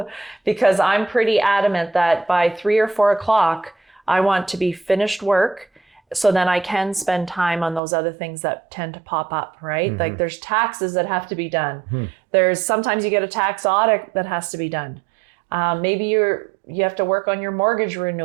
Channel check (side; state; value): left; drops out; at 7.8 s